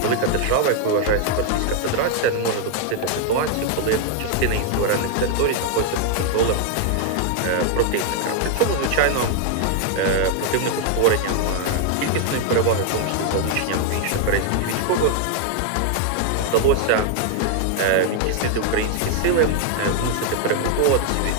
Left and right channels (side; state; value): both; different; correlation 0.00